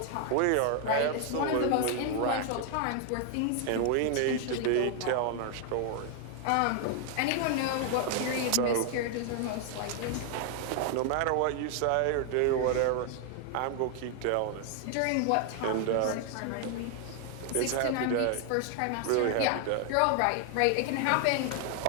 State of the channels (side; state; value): both; different; correlation 0.00